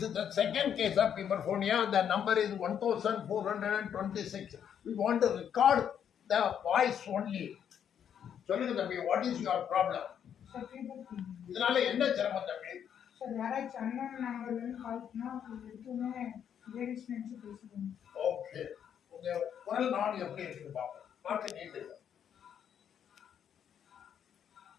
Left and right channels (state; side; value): quieter; right; 8.7 dB